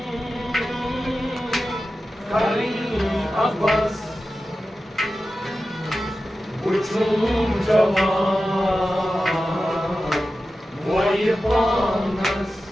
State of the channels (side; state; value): both; normal; correlation 0.93